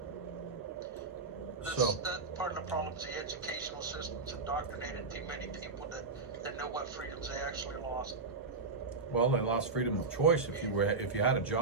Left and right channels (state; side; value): quieter; left; 4.1 dB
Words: That's part of the problem is the educational system's indoctrinated too many people that know what freedoms they actually lost. Well, they lost freedom of choice if you had a